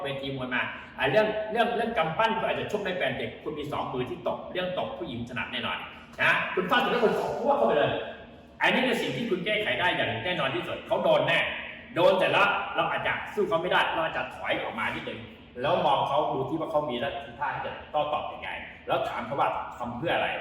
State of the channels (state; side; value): identical; both; correlation 1.00